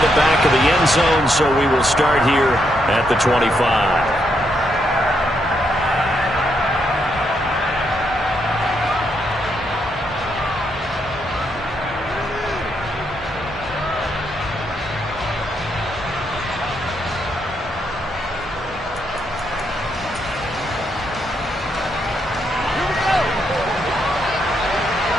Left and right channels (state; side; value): normal; both; correlation 0.78